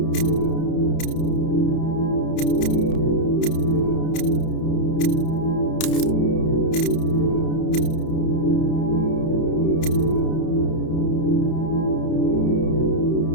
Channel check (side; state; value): right; late; 31 ms